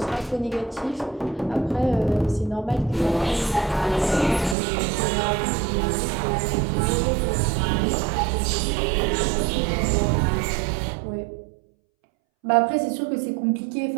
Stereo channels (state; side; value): drops out; left; at 4.5 s